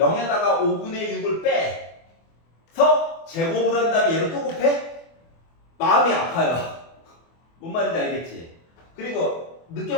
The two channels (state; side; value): late; right; 24 ms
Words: 5분의 6을 빼서 제곱을 한 다음에 얘를 또 곱해? 마음이 아파요. 뭔 말인지 알겠지? 그리고